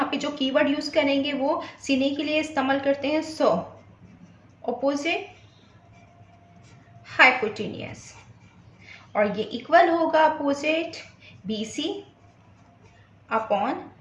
पे जो कीवर्ड यूज करेंगे वो sin A के लिए इस्तेमाल करते हैं सो, अपोजिट हाइपोटेनियस, और ये इक्वल होगा opposite BC upon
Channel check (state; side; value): identical; both; correlation 1.00